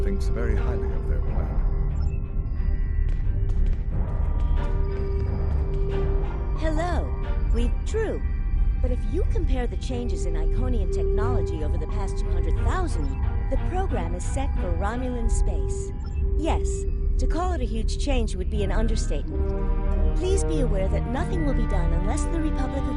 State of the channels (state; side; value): identical; both; correlation 1.00